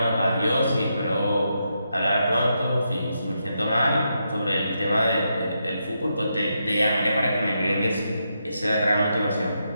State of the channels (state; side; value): inverted; both; correlation -0.83